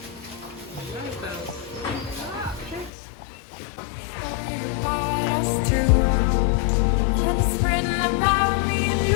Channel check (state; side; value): drops out; right; at 2.9 s